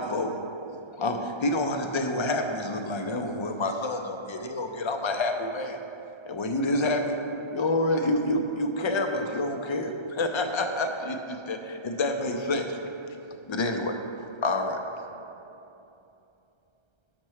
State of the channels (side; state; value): right; late; 1.3 ms